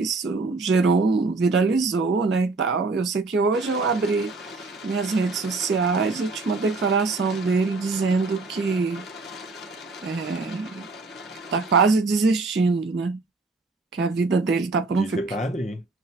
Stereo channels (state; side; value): quieter; left; 3.7 dB